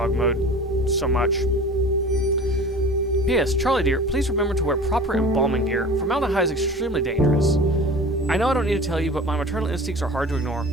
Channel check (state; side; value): normal; both; correlation 0.39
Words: mode so much. P.S. Charlie dear, please remember to wear proper embalming gear. Formaldehyde is extremely dangerous. I know I don't need to tell you, but my maternal instincts are hard to ignore.